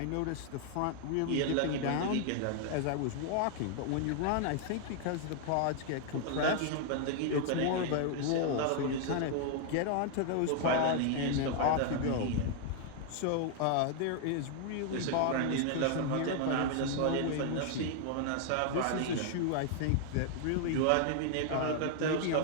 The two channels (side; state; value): both; different; correlation 0.00